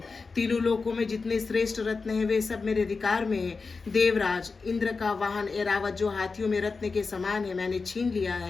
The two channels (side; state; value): right; quieter; 4.4 dB